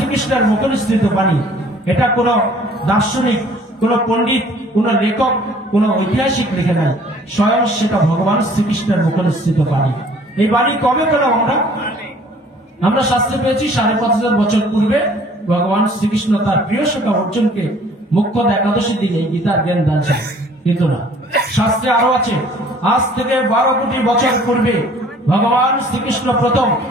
মুখনিসৃত বাণী, এটা কোন দার্শনিক, কোন পণ্ডিত, কোন লেখক, কোন ঐতিহাসিক লিখে নাই, স্বয়ং সেটা ভগবান শ্রীকৃষ্ণের মুখনিসৃত বাণী। এই বাণী কবে পেলাম আমরা শাস্ত্রে পেয়েছি 5,500 বছর পূর্বে ভগবান শ্রীকৃষ্ণ তার প্রিয় সখা অর্জুনকে মুখ্য একাদশীর দিনে এই গীতার জ্ঞান দানছেন। কিন্তু না, শাস্ত্রে আরো আছে, আজ থেকে 12 কোটি বছর পূর্বে ভগবান শ্রীকৃষ্ণ প্রথম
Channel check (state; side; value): normal; both; correlation 0.54